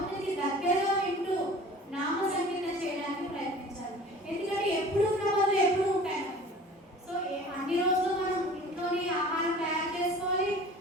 దగ్గరగా వింటూ నామ సంకీర్తన చేయడానికి ప్రయత్నించాలి. ఎందుకంటే ఎప్పుడు ఉన్న పనులు ఎప్పుడు ఉంటాయి. సో అన్ని రోజులు మనం ఇంట్లోని ఆహారం తయారు చేసుకోవాలి,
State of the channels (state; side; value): normal; both; correlation 0.44